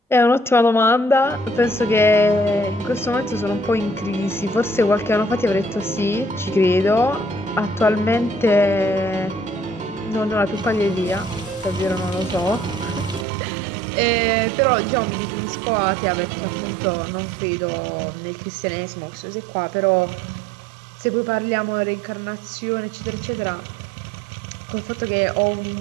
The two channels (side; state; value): left; drops out; at 13.2 s